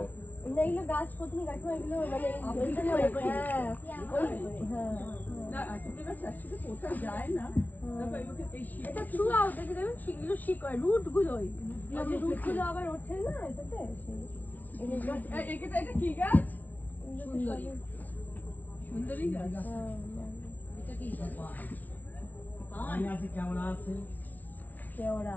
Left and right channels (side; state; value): right; late; 0.086 ms